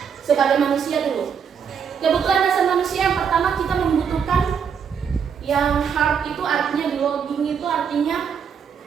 sebagai manusia dulu. Kebutuhan dasar manusia yang pertama kita membutuhkan yang heart itu artinya belonging itu artinya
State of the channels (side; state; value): left; quieter; 7.1 dB